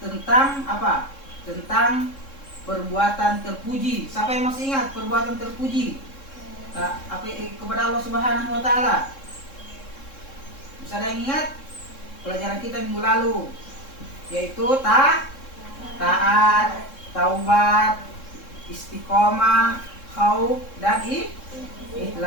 apa? Tentang perbuatan terpuji. Siapa yang masih ingat perbuatan terpuji? Kepada Allah Subhanahu wa taala. Bisa ada yang ingat pelajaran kita minggu lalu, yaitu taat, taubat, istiqomah, khauf dan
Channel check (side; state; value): right; late; 3.7 ms